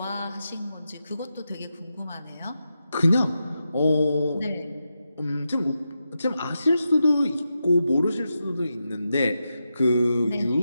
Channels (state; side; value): inverted; both; correlation -0.88